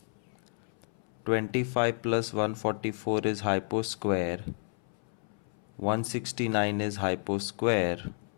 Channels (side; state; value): right; silent; 57 dB below the other